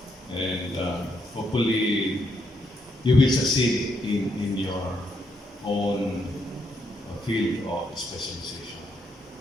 And hopefully you will succeed in your own field of specialization.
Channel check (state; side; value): normal; both; correlation 0.76